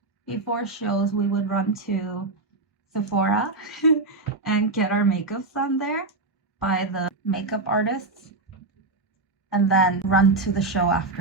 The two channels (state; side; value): quieter; left; 3.3 dB